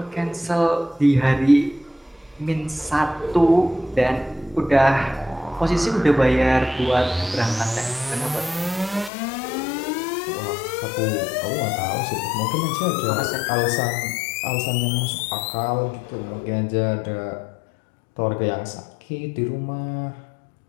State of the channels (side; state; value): right; drops out; at 9.1 s